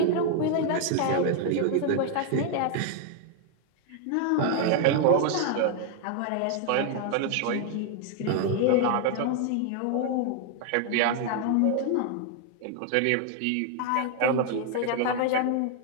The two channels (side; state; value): both; different; correlation 0.00